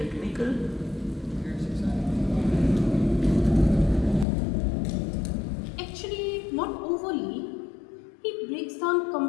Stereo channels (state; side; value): drops out; right; at 4.2 s